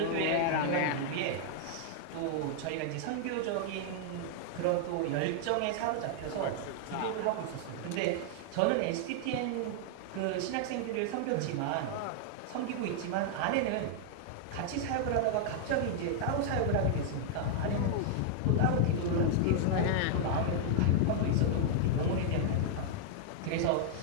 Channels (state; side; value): different; both; correlation -0.01